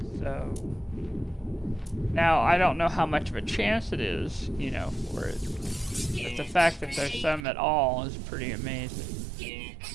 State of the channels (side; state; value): left; drops out; at 7.5 s